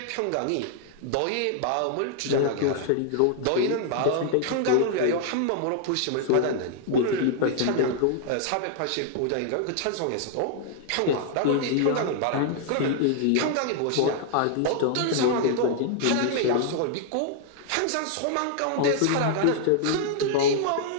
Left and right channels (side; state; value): both; different; correlation 0.00